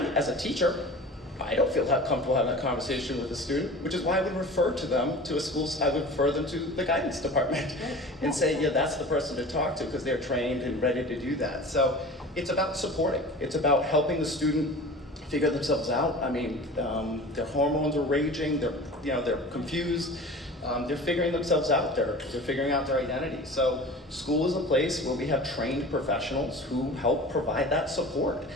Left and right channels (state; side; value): normal; both; correlation 0.38